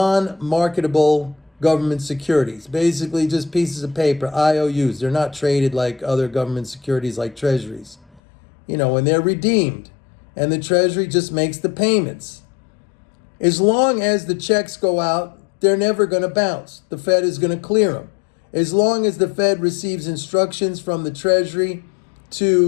government securities, basically just pieces of paper, IOUs. They're not traded like other government securities like treasuries. And they're redeemed, and the Treasury just makes the payments. As long as the checks go out, they're never going to bounce. The Fed is going to clear them. As long as the Fed receives instructions from the Treasury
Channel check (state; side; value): drops out; right; at 8.2 s